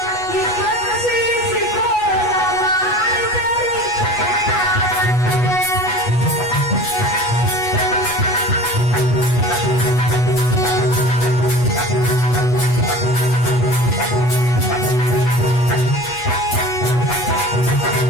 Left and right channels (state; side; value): late; right; 8.2 ms